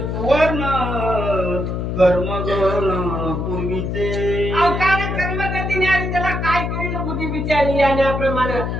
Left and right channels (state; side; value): noise; left; hum, 2 dB below the sound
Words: कर्मगण पूर्वीचे अवकाळ कर्मगतीने आणि त्याला काय करील बुद्धी विचारली याप्रमाणे